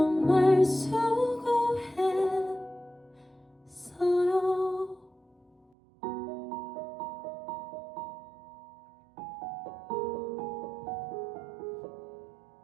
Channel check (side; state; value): left; drops out; at 5.7 s